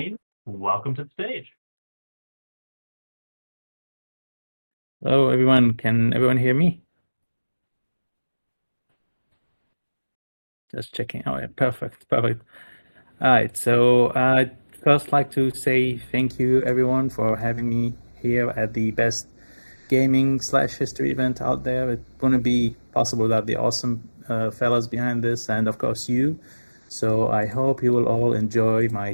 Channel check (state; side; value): inverted; both; correlation -1.00